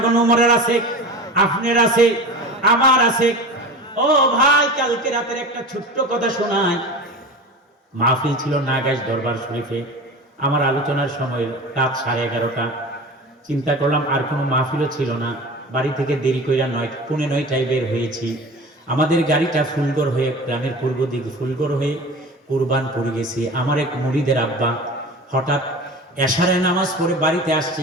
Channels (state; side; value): normal; both; correlation 0.33